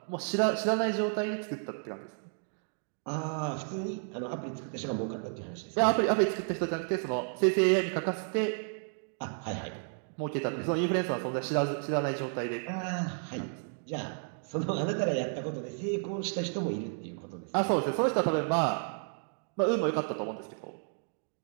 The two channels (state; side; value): silent; left; 56 dB below the other